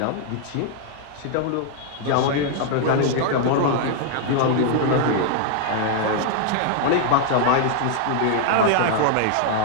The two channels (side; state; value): both; different; correlation 0.00